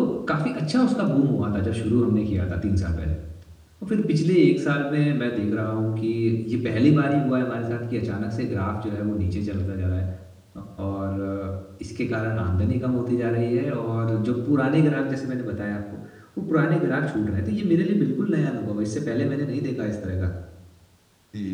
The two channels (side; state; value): both; identical; correlation 1.00